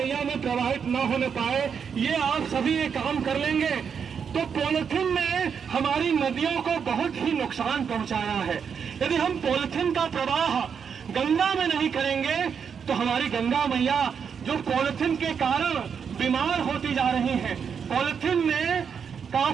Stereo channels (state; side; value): quieter; left; 6.8 dB